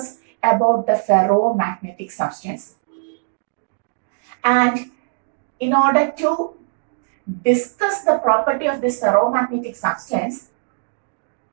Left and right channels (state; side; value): silent; left; digital silence